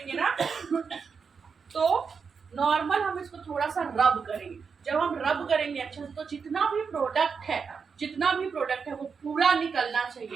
ना, तो नॉर्मल हम इसको थोड़ा सा रब करेंगे। जब हम रब करेंगे अच्छा, तो जितना भी प्रोडक्ट है वो पूरा निकलना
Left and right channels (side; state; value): left; quieter; 5.7 dB